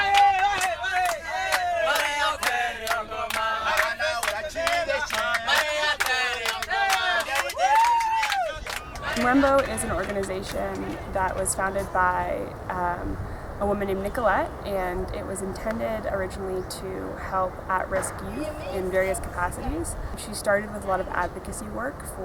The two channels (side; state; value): both; identical; correlation 1.00